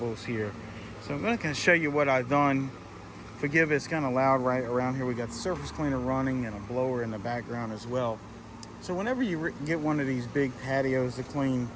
here. So I'm going to show you what I've done. Forgive, it's kind of loud right around here. We got the surface cleaner running and a blower in the background as well. So whenever you get one of these big patios to clean,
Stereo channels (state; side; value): identical; both; correlation 1.00